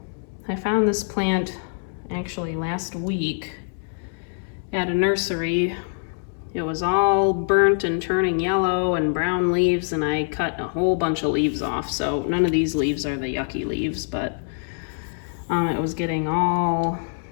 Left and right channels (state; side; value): silent; right; digital silence